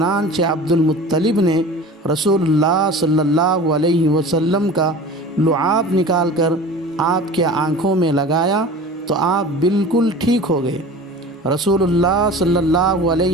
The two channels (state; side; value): normal; both; correlation 0.38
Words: عبد المطلب نے رسول اللہ صلی اللہ علیہ وسلم کا لعاب نکال کر آپ کے آنکھوں میں لگایا تو آپ بالکل ٹھیک ہو گئے۔ رسول اللہ صلی اللہ